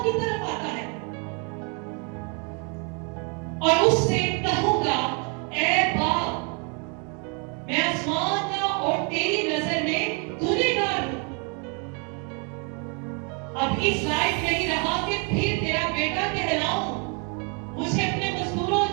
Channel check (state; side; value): quieter; left; 35.2 dB